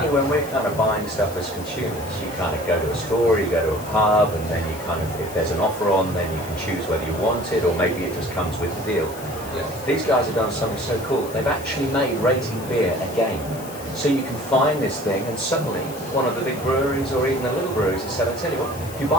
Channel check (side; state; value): left; noise; hiss, 16 dB below the sound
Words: when we're kind of buying stuff as consumers, you kind of go to a store, you go to a pub, and then you kind of, if there's an offer on, then you can choose whether you want it, or maybe it just comes with the deal. Yeah. These guys have done something so cool. They've actually made rating beer a game. So you can find this thing, and suddenly one of the big breweries or even the little breweries has said, I tell you what, if you